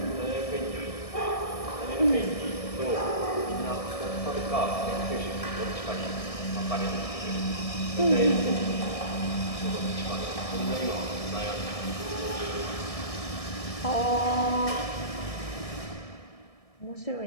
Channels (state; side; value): late; right; 1.7 ms